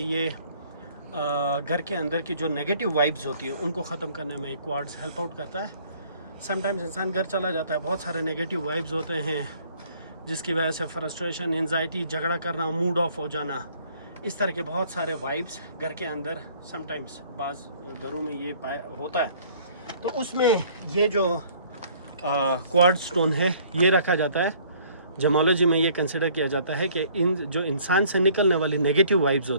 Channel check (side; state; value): both; inverted; correlation -0.57